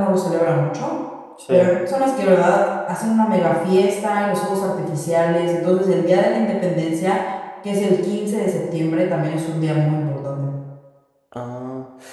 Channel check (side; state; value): both; identical; correlation 1.00